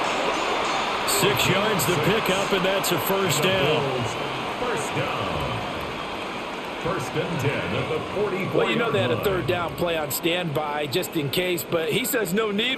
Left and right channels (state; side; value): identical; both; correlation 1.00